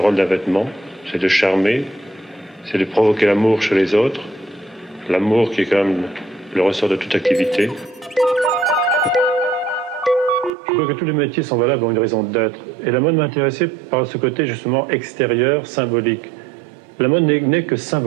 d'un vêtement, c'est de charmer, c'est de provoquer l'amour chez les autres, l'amour qui est quand même le ressort de toute activité. Je crois que tous les métiers sont valables pour une raison d'être. Et la mode m'intéressait par ce côté justement extérieur, symbolique. La mode n'est que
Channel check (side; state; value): left; drops out; at 10.5 s